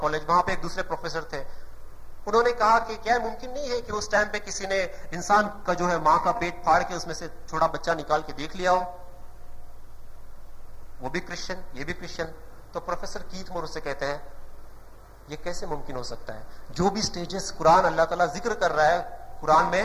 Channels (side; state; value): both; identical; correlation 1.00